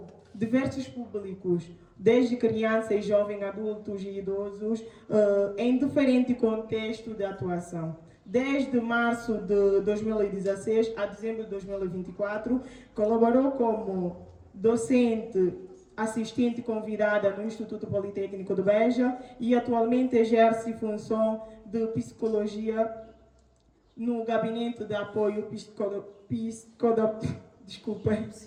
diversos públicos, desde crianças, jovens, adultos e idosos, em diferente contexto de atuação. Desde março de 2016 a dezembro de 2024, colaborou como docente assistente convidada no Instituto Politécnico de Beja e atualmente exerce função de psicologia no Gabinete de Apoio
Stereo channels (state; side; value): identical; both; correlation 1.00